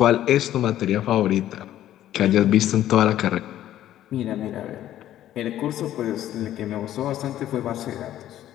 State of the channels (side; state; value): right; quieter; 12.6 dB